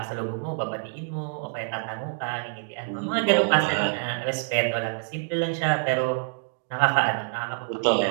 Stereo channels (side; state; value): left; silent; 61 dB below the other